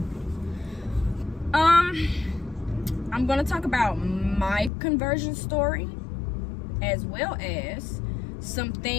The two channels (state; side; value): drops out; right; at 4.7 s